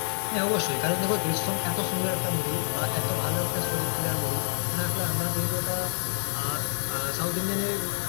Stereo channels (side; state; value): right; silent; digital silence